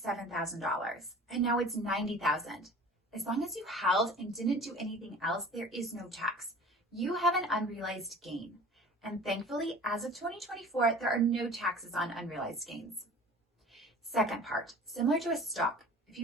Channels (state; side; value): normal; both; correlation 0.43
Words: $7,000 and now it's $90,000. As long as you held and didn't do anything else, there is no tax. You have an unrealized gain. And thankfully, as of 2024, there are no taxes on unrealized gains. Second part, similar to a stock. If